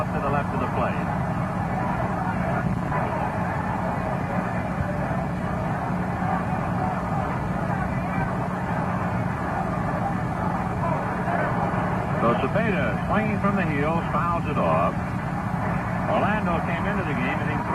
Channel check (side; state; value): both; identical; correlation 1.00